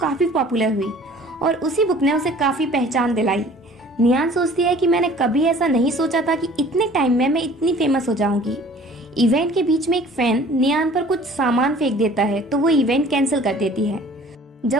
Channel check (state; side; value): normal; both; correlation 0.50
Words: पॉपुलर हुई और उसी बुक ने उसे काफी पहचान दिलाई। नियान सोचती है कि मैंने कभी ऐसा नहीं सोचा था कि इतने टाइम में मैं इतनी फेमस हो जाऊंगी। इवेंट के बीच में एक फैन नियान पर कुछ सामान फेंक देता है, तो वो इवेंट कैंसिल कर देती है।